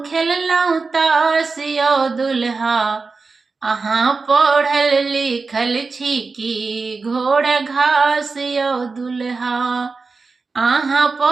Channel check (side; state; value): left; quieter; 4.3 dB